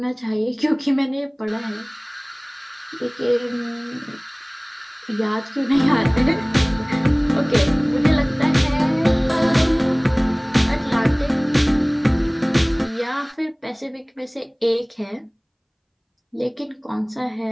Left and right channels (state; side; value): identical; both; correlation 1.00